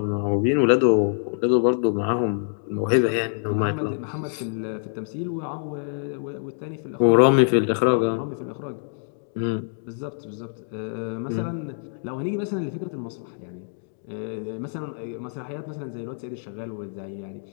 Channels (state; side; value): silent; right; digital silence